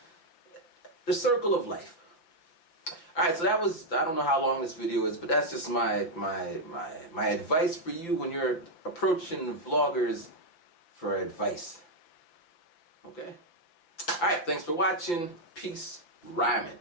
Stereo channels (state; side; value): late; right; 5.9 ms